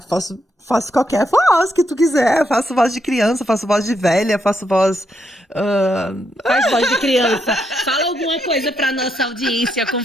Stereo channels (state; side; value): normal; both; correlation 0.79